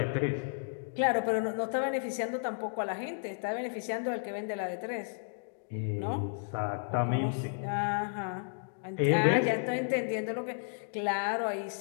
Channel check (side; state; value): right; silent; digital silence